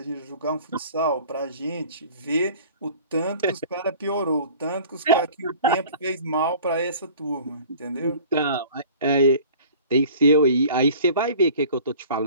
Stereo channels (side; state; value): both; inverted; correlation -0.47